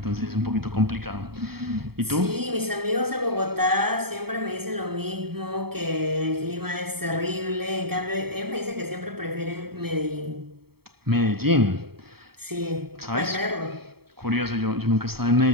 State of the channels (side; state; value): left; late; 0.95 ms